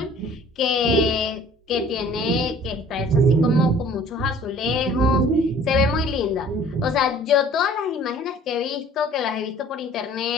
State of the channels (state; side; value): normal; both; correlation 0.51